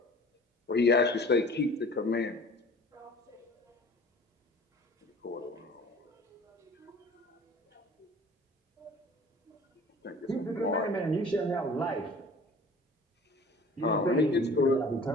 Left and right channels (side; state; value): both; normal; correlation 0.45